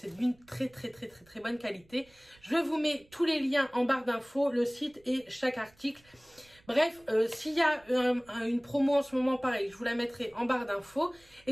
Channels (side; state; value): right; noise; rumble, 30 dB below the sound